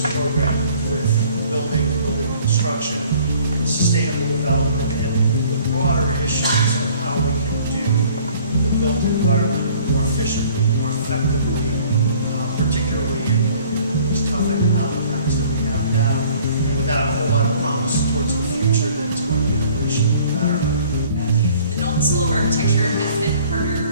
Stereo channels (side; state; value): both; inverted; correlation -0.53